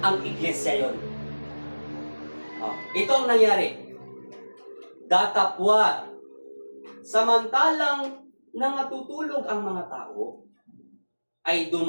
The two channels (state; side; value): inverted; both; correlation -1.00